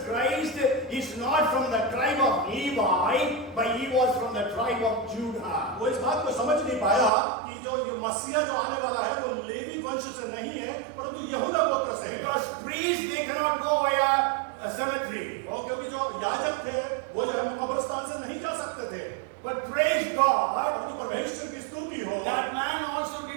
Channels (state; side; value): drops out; left; at 7.1 s